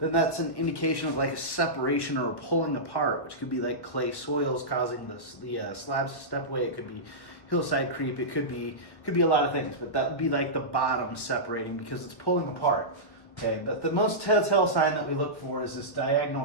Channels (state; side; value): late; right; 1.1 ms